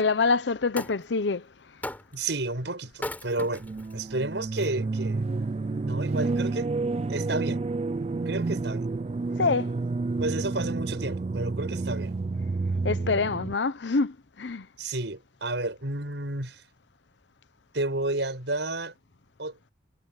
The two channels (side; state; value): both; normal; correlation 0.20